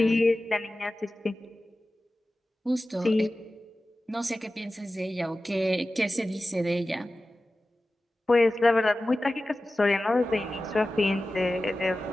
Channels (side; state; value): both; normal; correlation 0.95